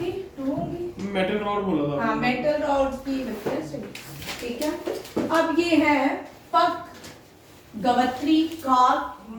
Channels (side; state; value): both; identical; correlation 1.00